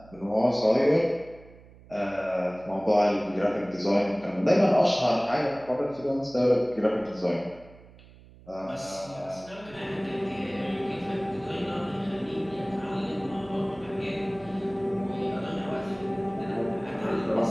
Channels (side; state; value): right; noise; hum, 22 dB below the sound